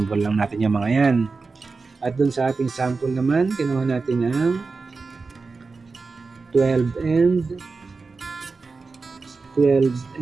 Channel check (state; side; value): quieter; left; 4.2 dB